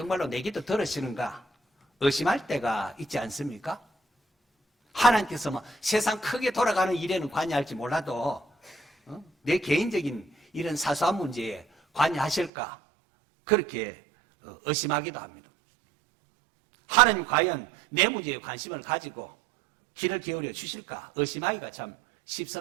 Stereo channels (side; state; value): left; drops out; at 12.5 s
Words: 내 기도 들으시는가 의심할 때가 있지 않습니까? 하나님께서 뭐 세상 크게 돌아가는 일에는 관여할지 몰라도 내 개인적인 이런 사소한 문제에 관여하실까 그렇게 의심하기도 합니다. 하나님 과연 내 문제에 관심을 가지고 귀를 기울여 주실까 의심하기가 참